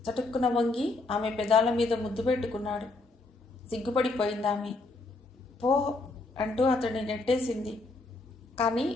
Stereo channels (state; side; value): quieter; right; 3.3 dB